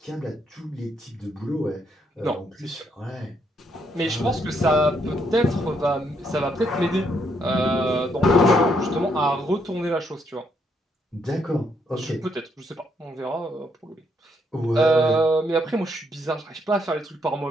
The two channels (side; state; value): both; normal; correlation 0.74